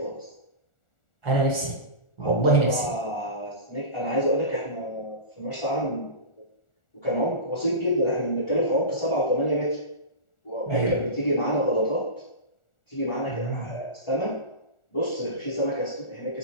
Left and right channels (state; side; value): late; right; 1.4 ms